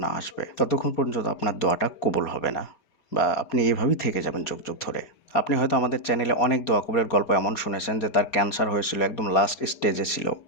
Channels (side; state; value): right; late; 4.3 ms